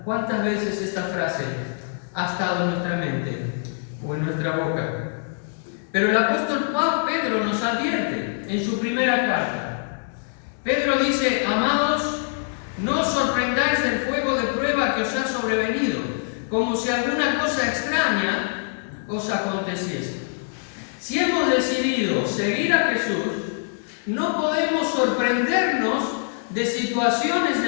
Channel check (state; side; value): silent; right; digital silence